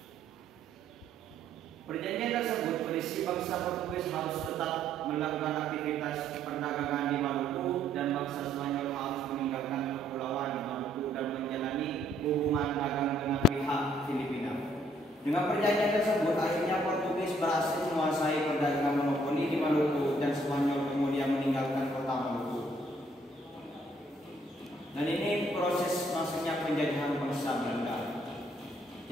Perjanjian tersebut berisi bangsa Portugis harus tetap melakukan aktivitas perdagangan di Maluku dan bangsa Spanyol harus meninggalkan kepulauan Maluku dan menjalani hubungan dagang dengan pihak Filipina. Dengan perjanjian tersebut, akhirnya Portugis berhasil menguasai perdagangan monopoli di Maluku dan Spanyol kemudian meninggalkan kota Maluku. Dan ini proses masuknya penjajahan bangsa Belanda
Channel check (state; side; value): normal; both; correlation 0.66